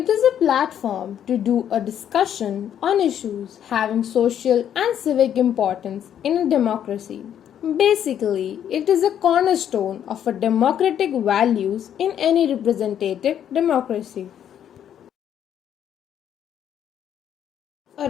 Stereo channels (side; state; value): right; quieter; 9.7 dB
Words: is a platform to do a discussion on issues having social and civic importance in a democracy. Basically, it is a cornerstone of a democratic values in any representative democracy.